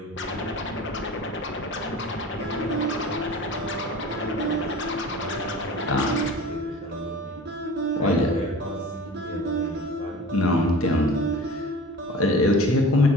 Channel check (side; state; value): both; normal; correlation 0.39